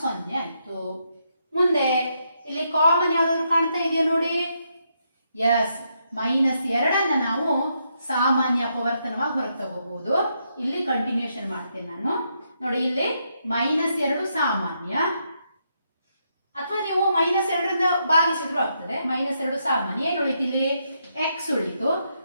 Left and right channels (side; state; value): both; inverted; correlation -0.79